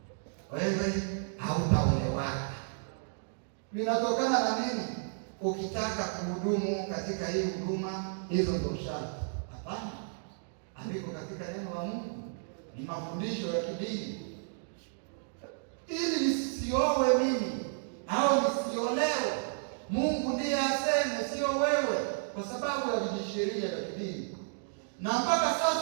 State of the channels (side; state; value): left; silent; digital silence